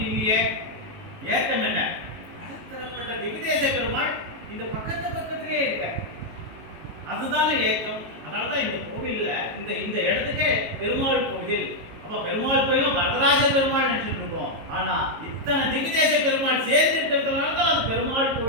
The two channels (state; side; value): late; left; 19 ms